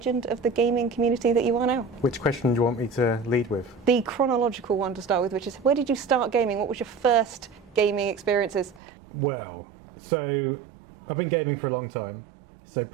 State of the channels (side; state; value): left; drops out; at 8.8 s